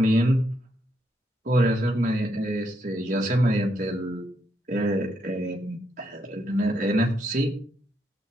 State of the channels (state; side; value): normal; both; correlation 0.78